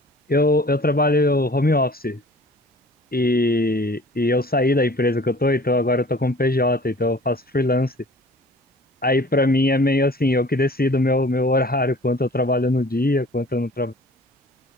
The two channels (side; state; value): both; normal; correlation 0.48